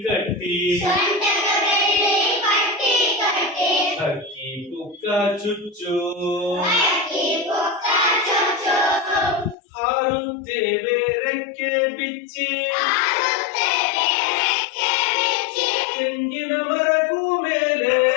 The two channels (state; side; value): drops out; right; at 9.6 s